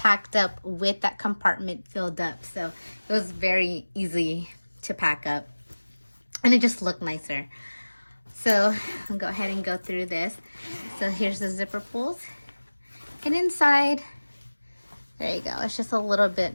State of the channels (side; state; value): both; inverted; correlation -1.00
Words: up with that compartment filled up, so it was very easy to pack up and it just looked nicer. So I'll go ahead and go through this. So here's the zipper pulls, and inside, there you go, it's just a little bit